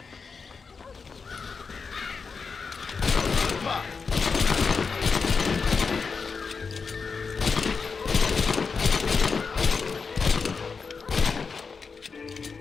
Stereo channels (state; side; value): quieter; right; 5.1 dB